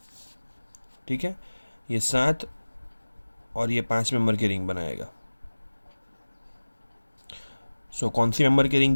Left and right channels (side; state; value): both; inverted; correlation -1.00